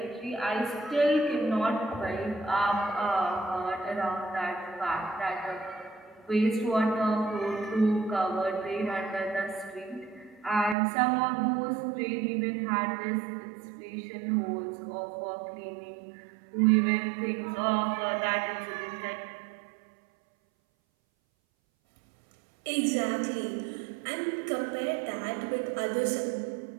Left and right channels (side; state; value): left; drops out; at 10.8 s